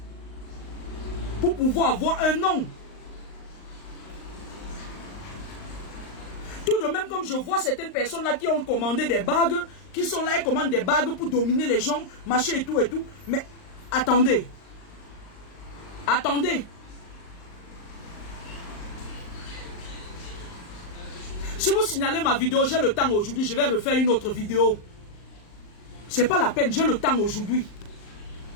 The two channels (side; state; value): right; late; 38 ms